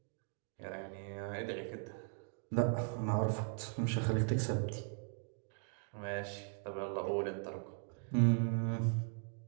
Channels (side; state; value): left; silent; 52 dB below the other